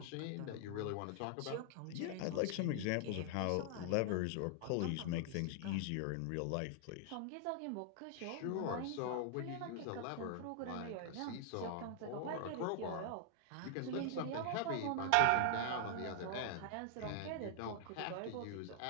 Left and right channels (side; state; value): both; different; correlation 0.00